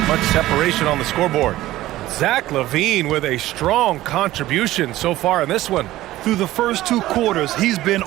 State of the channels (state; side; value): quieter; left; 15.8 dB